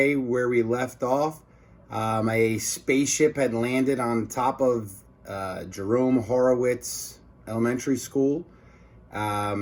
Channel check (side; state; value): both; identical; correlation 1.00